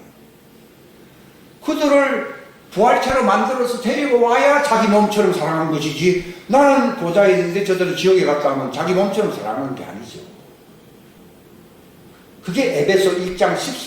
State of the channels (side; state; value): both; identical; correlation 1.00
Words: 그들을 부활체로 만들어서 데리고 와야 자기 몸처럼 사랑한 것이지, 나는 보좌에 있는데 저들은 지옥에 갔다 하면 자기 몸처럼 사랑하는 게 아니죠. 그게 에베소 1장